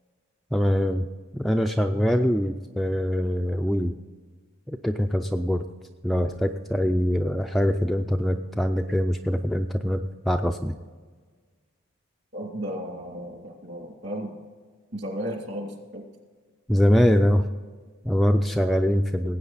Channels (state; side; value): normal; both; correlation 0.94